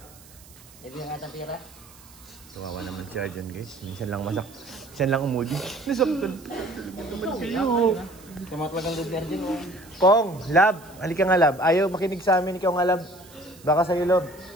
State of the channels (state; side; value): noise; right; hiss, 23 dB below the sound